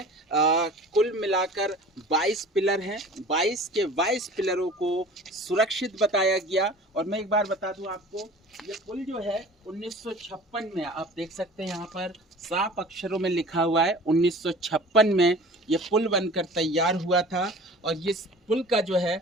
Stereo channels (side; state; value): both; normal; correlation 0.43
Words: कुल मिलाकर 22 पिलर हैं। 22 के 22 पिलरों को सुरक्षित बताया गया। और मैं एक बार बता दूं आपको, ये पुल जो है 1956 में, आप देख सकते हैं यहाँ पर साफ अक्षरों में लिखा हुआ है 1956 में ये पुल बनकर तैयार हुआ था। और इस पुल का जो है